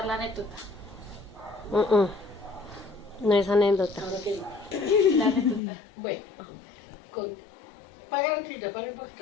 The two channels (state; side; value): drops out; right; at 5.6 s